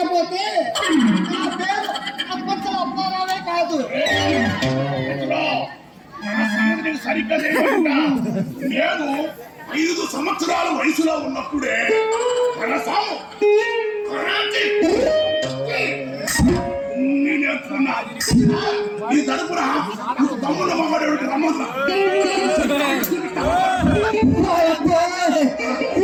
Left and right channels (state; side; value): identical; both; correlation 1.00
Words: నా పేరు అప్పచ్చల అప్పారావే కాదు. సరిగ్గా నేను 5 సంవత్సరాల వయసులో ఉన్నప్పుడే నేర్చుకున్నా. ఈ తరపున తమ్ముడు మమ్మడు రమ్మన్నా